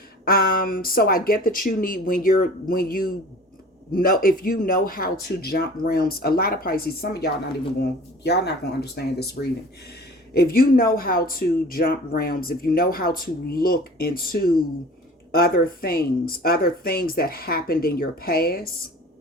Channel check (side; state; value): both; normal; correlation 0.44